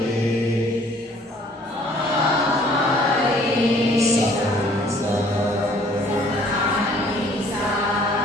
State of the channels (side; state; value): both; normal; correlation 0.57